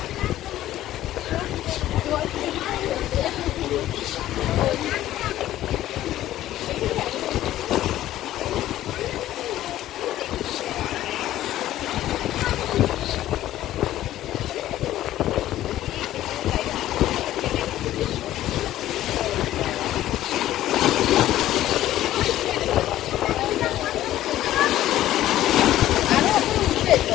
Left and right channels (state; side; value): quieter; right; 13.7 dB